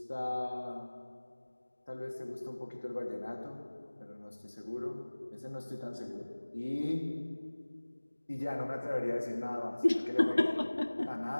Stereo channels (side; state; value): both; inverted; correlation -1.00